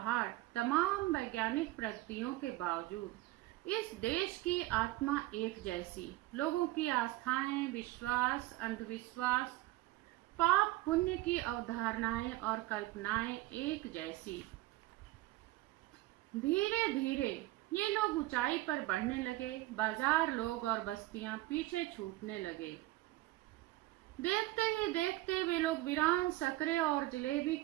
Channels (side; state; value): left; quieter; 18.0 dB